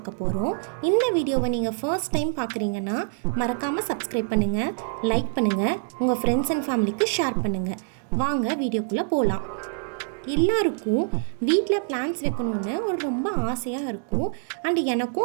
போகிறோம். இந்த வீடியோவை நீங்கள் ஃபர்ஸ்ட் டைம் பார்க்குறீங்கன்னா மறக்காமல் சப்ஸ்கிரைப் பண்ணுங்கள், லைக் பண்ணுங்கள், உங்கள் ஃப்ரெண்ட்ஸ் அண்ட் ஃபேமிலிக்கு ஷேர் பண்ணுங்கள். வாங்க வீடியோக்குள்ளே போகலாம். எல்லாருக்கும் வீட்டில் பிளான்ட்ஸ் வைக்கணுன்னு ஒரு ரொம்ப ஆசையாக இருக்கும். அண்ட்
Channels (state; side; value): silent; left; 61 dB below the other